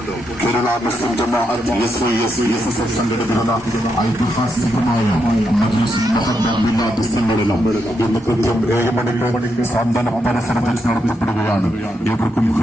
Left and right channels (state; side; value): normal; both; correlation 0.81